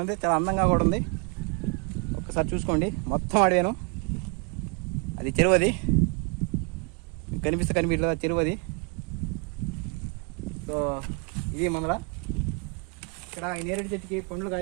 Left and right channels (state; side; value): quieter; left; 34.5 dB